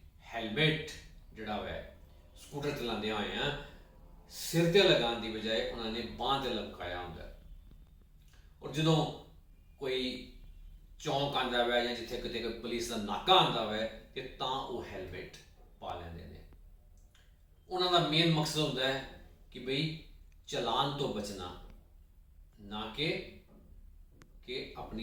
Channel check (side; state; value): both; identical; correlation 1.00